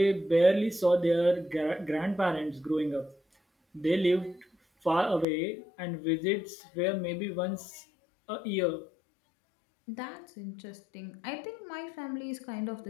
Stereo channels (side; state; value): right; drops out; at 5.2 s